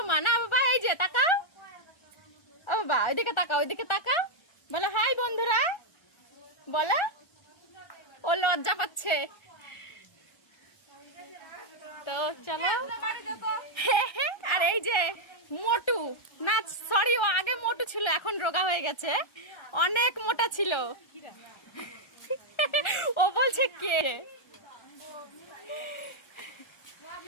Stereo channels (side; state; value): right; late; 1.3 ms